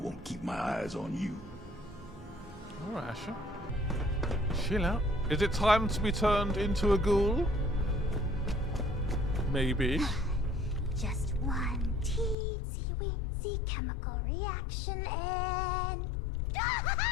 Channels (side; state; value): right; drops out; at 12.4 s